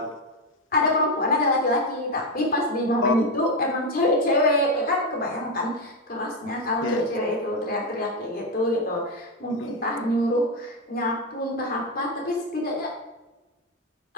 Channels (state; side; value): normal; both; correlation 0.08